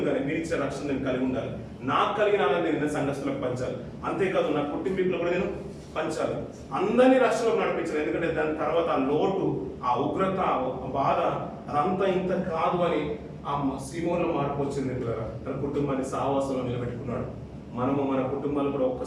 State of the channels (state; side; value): identical; both; correlation 1.00